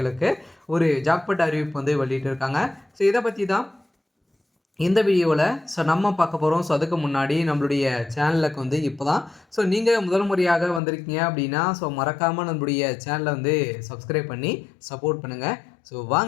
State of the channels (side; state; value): right; drops out; at 10.8 s